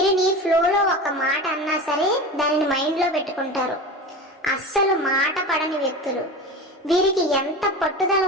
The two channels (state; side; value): normal; both; correlation 0.29